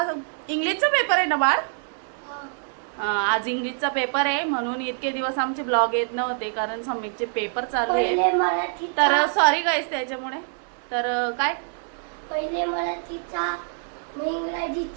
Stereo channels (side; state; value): left; silent; 62 dB below the other